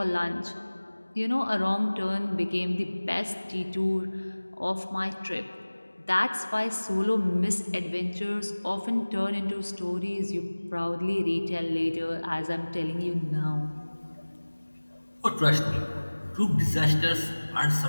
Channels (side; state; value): both; inverted; correlation -1.00